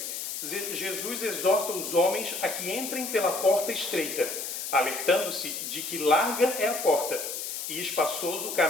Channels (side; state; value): left; noise; hiss, 5 dB below the sound